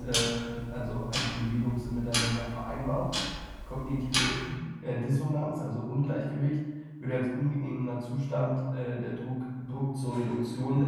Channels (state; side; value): identical; both; correlation 1.00